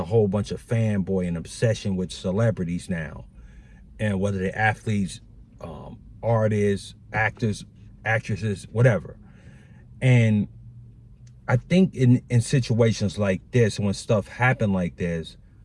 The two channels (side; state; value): both; identical; correlation 1.00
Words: whole bunch of fanboy and obsession with celebrities now. And whether they're athletes, artists, actors, actresses, whatever. And I think in situations like this, when stuff happen like this,